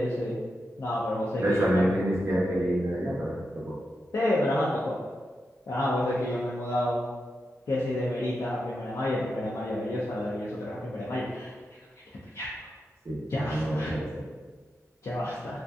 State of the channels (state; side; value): normal; both; correlation 0.87